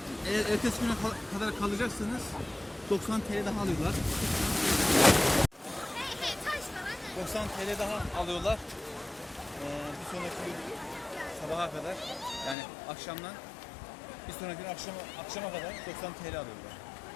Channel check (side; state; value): right; drops out; at 12.6 s